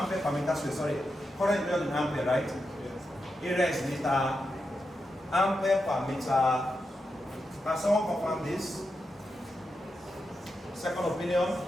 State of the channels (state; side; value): normal; both; correlation 0.87